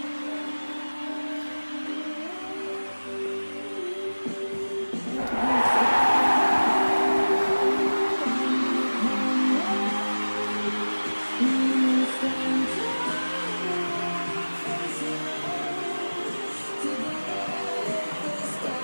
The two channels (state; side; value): inverted; both; correlation -1.00